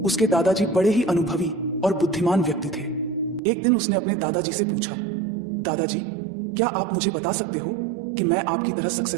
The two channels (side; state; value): left; drops out; at 3.4 s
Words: उसके दादाजी बड़े ही अनुभवी और बुद्धिमान व्यक्ति थे। एक दिन उसने अपने दादाजी से पूछा, दादाजी, क्या आप मुझे बता सकते हो कि मैं आपकी तरह